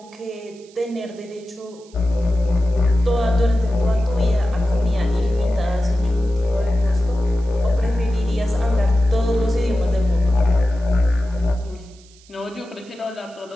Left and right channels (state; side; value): noise; right; hiss, 27 dB below the sound